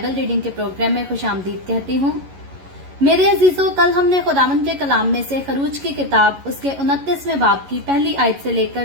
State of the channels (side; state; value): left; late; 11 ms